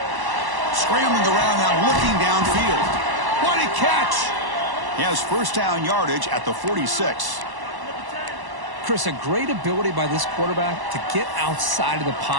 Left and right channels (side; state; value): left; late; 1.1 ms